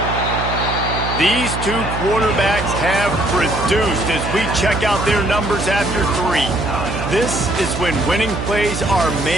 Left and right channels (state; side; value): noise; right; hum, 5 dB below the sound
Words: These two quarterbacks have produced as we check out their numbers after 3. This is when winning plays are